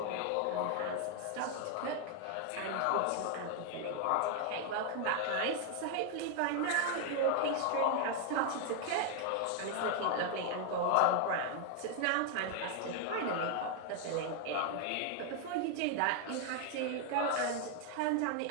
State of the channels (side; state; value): both; different; correlation 0.00